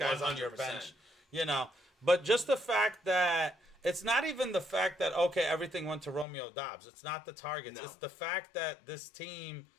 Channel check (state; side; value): drops out; right; at 6.2 s